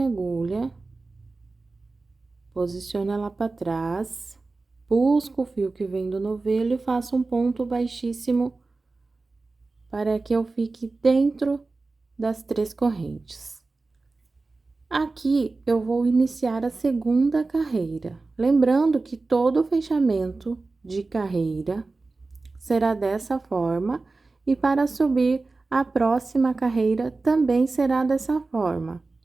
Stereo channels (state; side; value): quieter; left; 3.6 dB